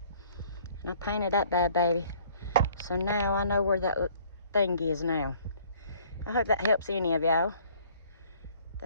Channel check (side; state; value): both; inverted; correlation -0.57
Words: And I painted that bad baby. So now I know where that thing is now. I hope that helps any of y'all